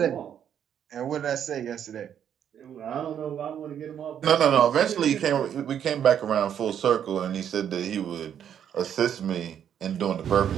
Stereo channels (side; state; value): left; quieter; 9.2 dB